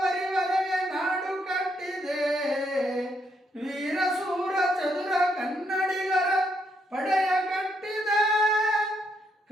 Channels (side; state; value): both; normal; correlation 0.75